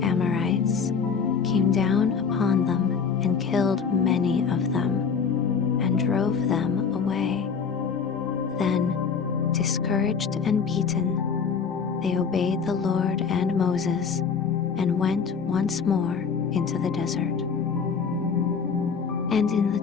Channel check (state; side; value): quieter; right; 6.0 dB